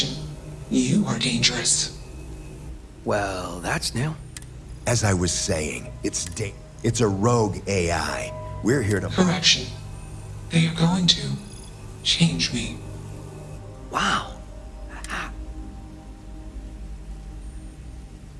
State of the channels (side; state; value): both; identical; correlation 1.00